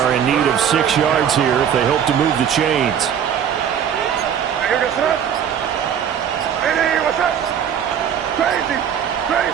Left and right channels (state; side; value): quieter; left; 8.6 dB